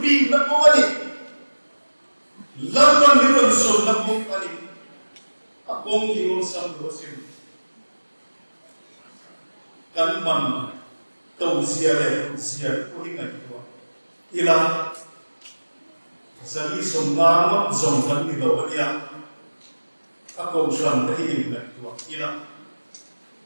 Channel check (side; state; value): both; inverted; correlation -1.00